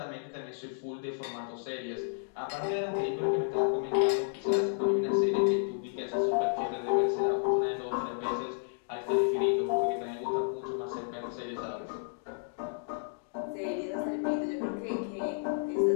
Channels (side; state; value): right; silent; digital silence